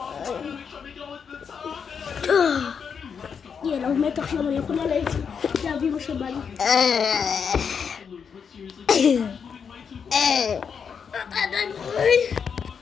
יאללה, הוא מת עכשיו, אני יכולה להביא מה שבא לי. אתה עדיין חי?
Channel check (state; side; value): quieter; right; 6.6 dB